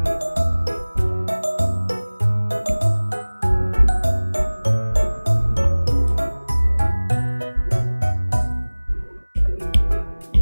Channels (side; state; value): both; inverted; correlation -1.00